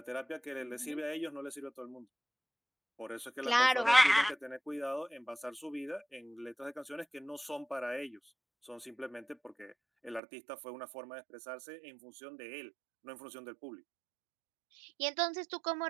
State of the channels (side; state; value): left; drops out; at 10.2 s